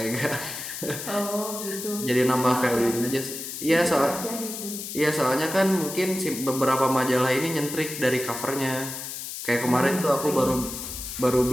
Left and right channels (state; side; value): noise; left; hiss, 8 dB below the sound